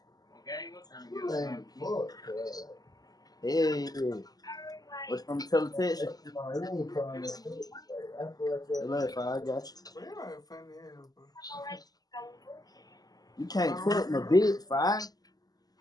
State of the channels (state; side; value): late; right; 0.18 ms